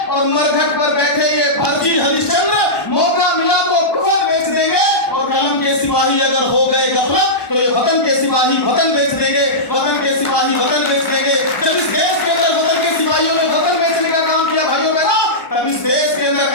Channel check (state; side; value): late; right; 1.2 ms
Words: और मरघट पर बैठे ये फर्जी हरिश्चंद्र मौका मिला तो कुफर बेच देंगे और कलम के सिपाही अगर हो गए गफलत तो ये वतन के सिपाही वतन बेच देंगे, वतन के सिपाही वतन बेच देंगे। जब इस देश के अंदर वतन के सिपाहियों ने वतन बेचने का काम किया भाइयों बहनों, तब इस देश के अंदर